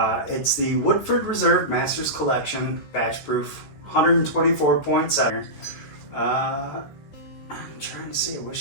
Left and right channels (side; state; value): right; late; 14 ms